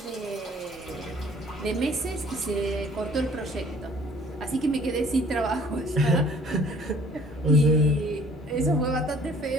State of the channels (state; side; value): normal; both; correlation 0.56